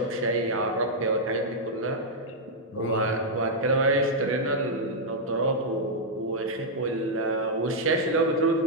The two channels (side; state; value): both; normal; correlation -0.05